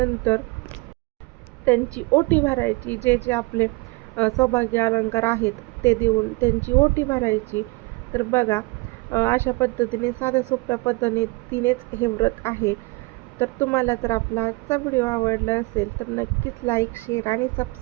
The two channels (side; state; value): left; quieter; 25.4 dB